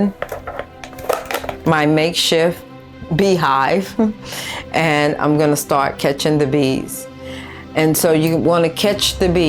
my makeshift beehive and I'm gonna start catching the bees. And so you wanna catch the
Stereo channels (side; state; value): both; identical; correlation 1.00